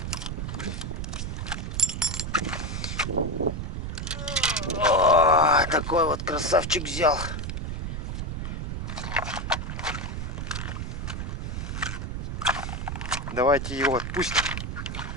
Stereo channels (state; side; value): noise; right; rumble, 4 dB below the sound